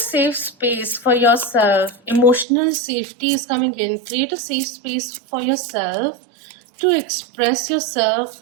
space for yourself. Emotional safety is coming in. Create a safe space for yourself to express yourself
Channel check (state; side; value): drops out; left; at 2.5 s